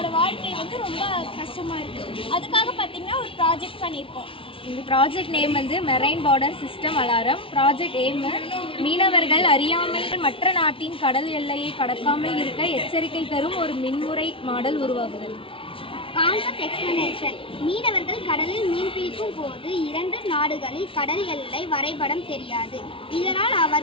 வாழ்க்கை வந்து ரொம்ப கஷ்டமாக இருக்குது. அதுக்காக பார்த்தீங்கன்னா ஒரு ப்ராஜெக்ட் பண்ணியிருக்கோம். இந்த ப்ராஜெக்ட் நேம் வந்து marine border system alarm. Project aim மீனவர்கள் அறியாமல் மற்ற நாட்டின் கடல் எல்லையை கடக்காமல் இருக்க எச்சரிக்கை தரும் ஒரு மின்முறை மாடல் உருவாகுதல். Concept explanation. மீனவர்கள் கடலில் மீன் பிடிக்கும் போது 2 நாடுகளில் கடல் எல்லை வரைபடம் தெரியாது. இதனால்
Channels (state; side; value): late; right; 0.26 ms